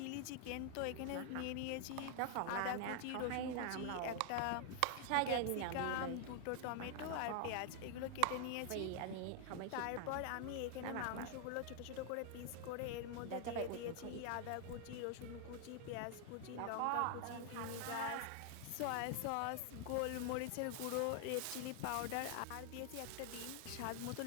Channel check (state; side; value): different; both; correlation 0.00